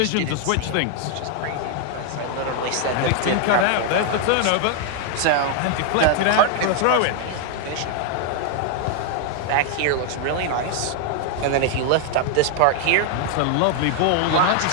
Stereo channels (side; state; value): both; different; correlation 0.00